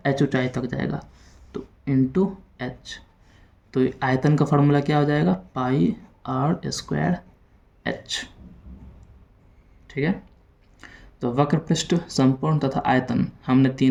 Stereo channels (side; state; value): both; identical; correlation 1.00